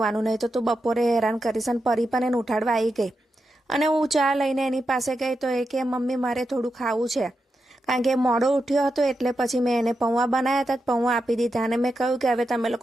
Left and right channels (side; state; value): both; normal; correlation 0.87